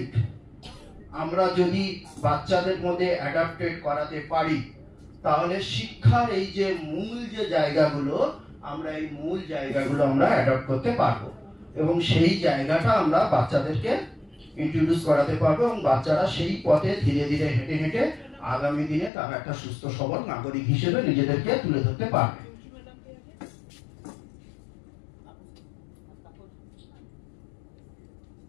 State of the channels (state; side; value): drops out; right; at 19.1 s